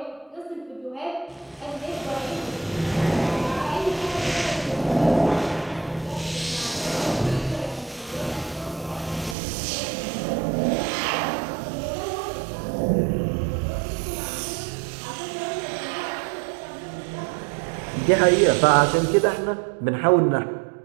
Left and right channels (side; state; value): left; drops out; at 9.3 s